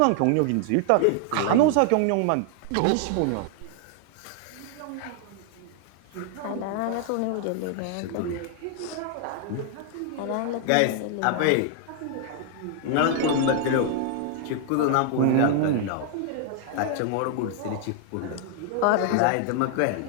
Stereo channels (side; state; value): both; different; correlation 0.00